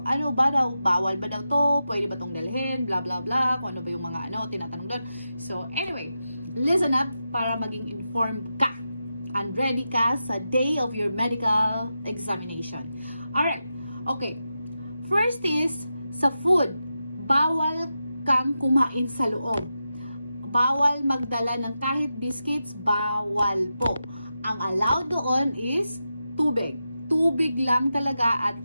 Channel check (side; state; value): both; inverted; correlation -0.89